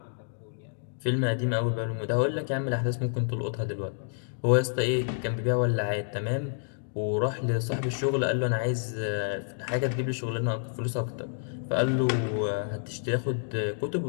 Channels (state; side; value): silent; right; digital silence